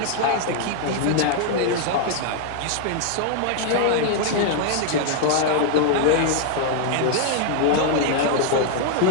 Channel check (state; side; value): different; both; correlation 0.00